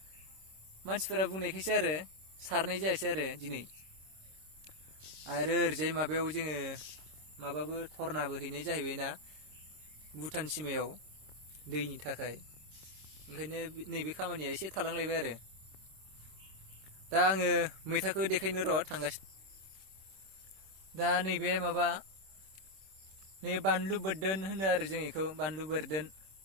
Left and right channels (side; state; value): left; late; 26 ms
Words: मानसिफोरा बुंनायखायसो आरो सारनाय जायासै आरो दिनै। आरो ओरैजाय माबायाव जोङो धरनाबो हैनाय जाहैबायना भुटान सिमायाव दैनि थाखाय। ओंखायनो नैबे खामानिया एसे थालांलायबाय आरो। दा आङो मैथाखौ देखायनो र' थांगासिनो। दा नैबे बानलु बोरदोन होनो आरो जों बेखौ, बानलु बोरदोन